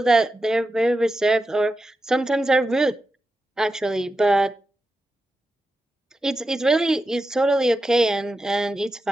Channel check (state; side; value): normal; both; correlation 0.90